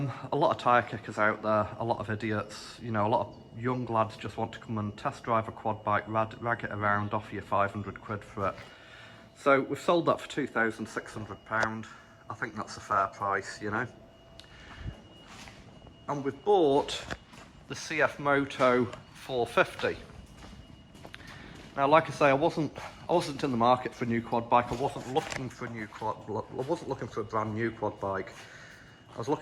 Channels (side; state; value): both; identical; correlation 1.00